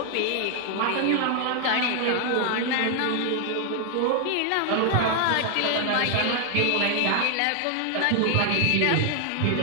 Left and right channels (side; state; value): both; different; correlation 0.00